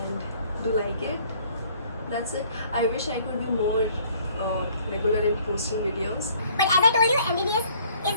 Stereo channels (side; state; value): both; inverted; correlation -0.59